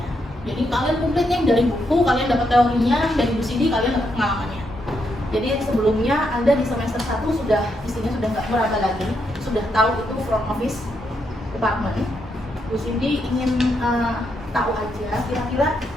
jadi kalian komplitnya dari buku, kalian dapat teorinya, dari Bu Sidi kalian dapat pengalamannya. Jadi sebelumnya Anda di semester 1 sudah isinya sudah nggak meraba lagi, sudah tahu itu front office department. Bu Cindy ingin tahu aja, kira-kira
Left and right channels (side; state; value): both; normal; correlation 0.79